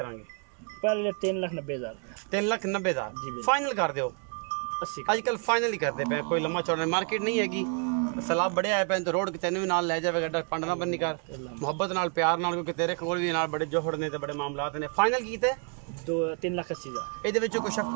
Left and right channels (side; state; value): left; quieter; 39.3 dB